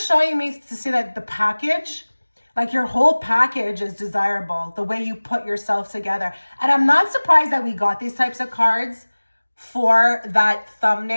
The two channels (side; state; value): both; inverted; correlation -1.00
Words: me to see that the package, like your whole package is desirable, the way you put yourself together. And I'm not surprised that we got these types of cards for that